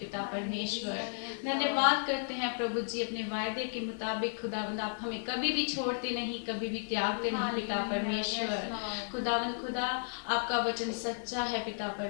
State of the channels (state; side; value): silent; right; digital silence